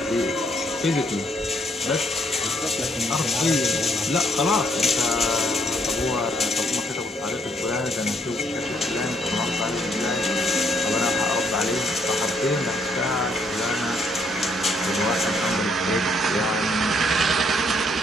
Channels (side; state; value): both; normal; correlation 0.70